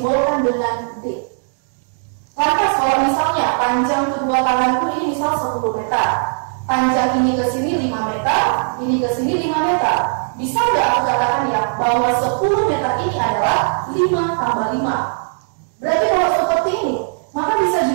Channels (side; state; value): left; silent; digital silence